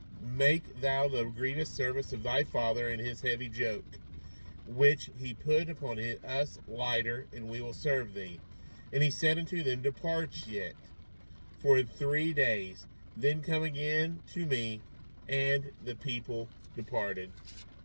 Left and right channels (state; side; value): inverted; both; correlation -1.00